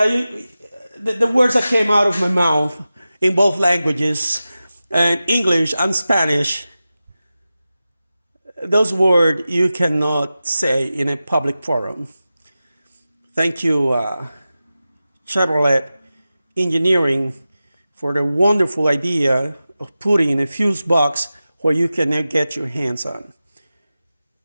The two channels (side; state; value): both; inverted; correlation -0.94